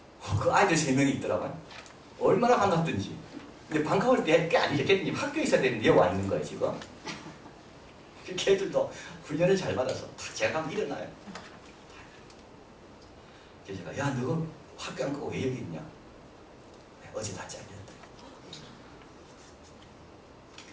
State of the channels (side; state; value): both; identical; correlation 1.00